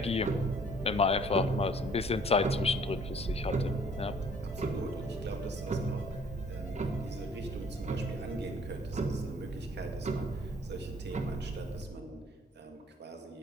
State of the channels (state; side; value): normal; both; correlation 0.57